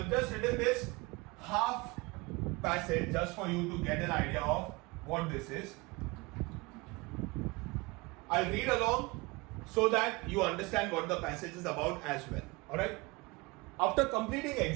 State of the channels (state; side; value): quieter; left; 24.8 dB